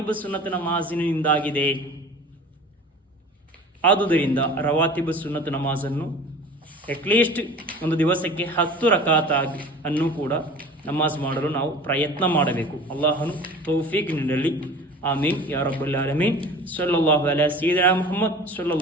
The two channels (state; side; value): normal; both; correlation 0.41